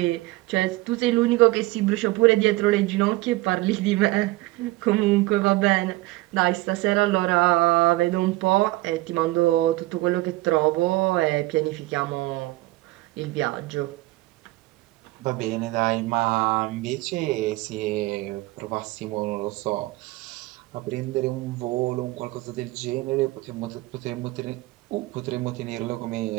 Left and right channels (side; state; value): left; quieter; 19.8 dB